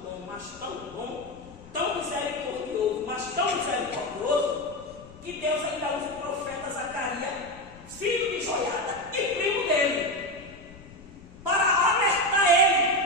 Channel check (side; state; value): left; noise; rumble, 21 dB below the sound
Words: bom, mas tão bom, tão misericordioso, mas tão misericordioso, que Deus ainda usa o profeta Zacarias, filho de Joiada e primo dele, para alertar